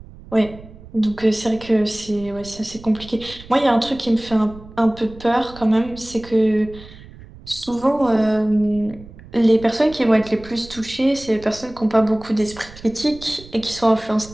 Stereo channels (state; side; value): noise; right; rumble, 18 dB below the sound